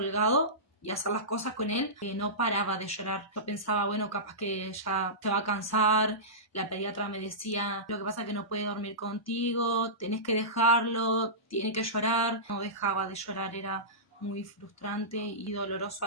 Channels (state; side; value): normal; both; correlation -0.20